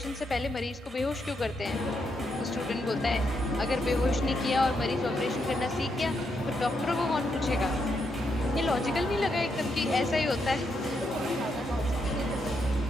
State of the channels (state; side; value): normal; both; correlation 0.80